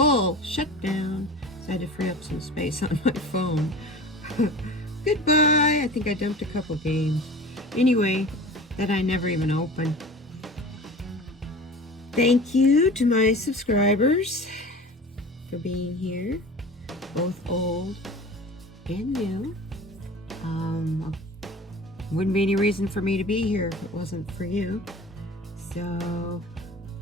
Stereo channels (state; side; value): normal; both; correlation 0.37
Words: Shut down." So I had to free up some space on my phone. Goodbye. I think I dumped a couple games. Anyway, that I never even opened. Thank you to my subscribers for being here, both old and new. Wouldn't be any reason for me to be here if it wasn't for you. So